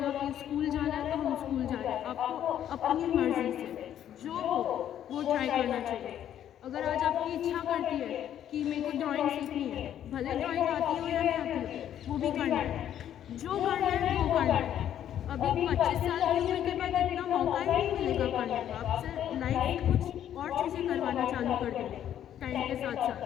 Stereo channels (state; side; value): quieter; right; 10.5 dB